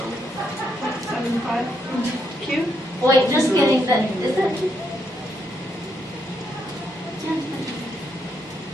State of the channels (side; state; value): both; normal; correlation 0.77